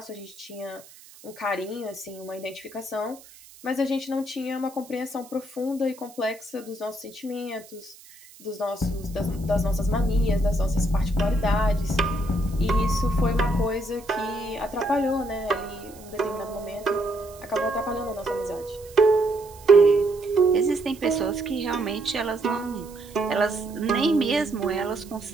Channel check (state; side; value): noise; right; hiss, 22 dB below the sound